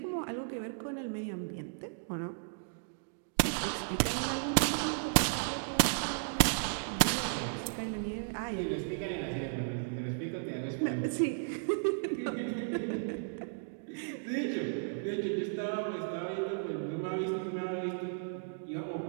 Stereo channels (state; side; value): silent; left; digital silence